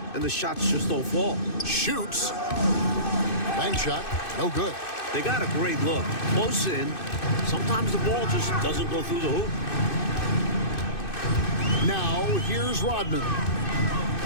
and the shots just don't fall. Shoots. Bank shot. No good. They got a great look. Close in. Sometimes the ball just doesn't go through the hoop. Now, here's Rodman.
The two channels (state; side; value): late; right; 2.6 ms